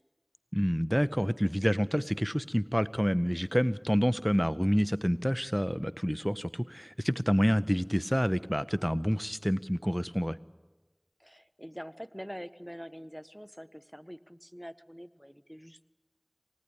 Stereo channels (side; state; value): both; identical; correlation 1.00